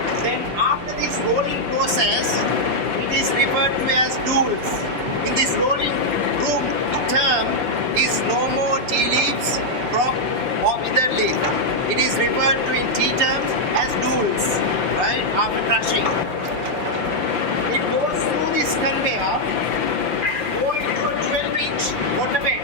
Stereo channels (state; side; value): late; left; 5.9 ms